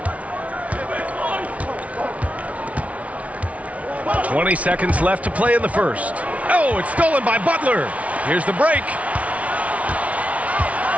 20 seconds left to play in the first. Oh, it's stolen by Butler. Here's the break.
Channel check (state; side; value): late; left; 0.066 ms